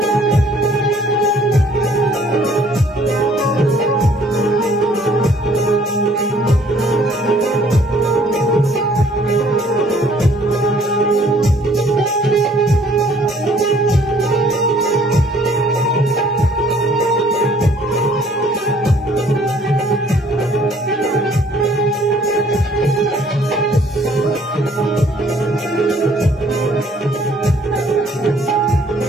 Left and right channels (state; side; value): normal; both; correlation 0.59